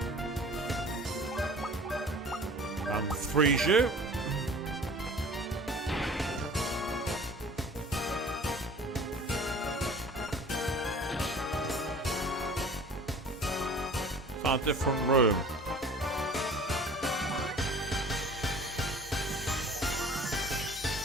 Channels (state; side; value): normal; both; correlation 0.45